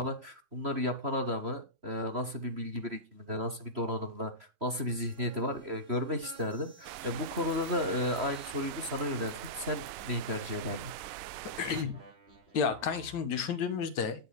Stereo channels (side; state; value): left; late; 3.0 ms